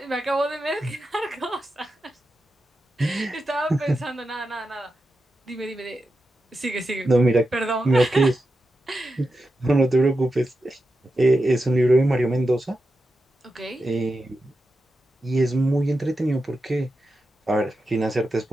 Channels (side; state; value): both; normal; correlation 0.90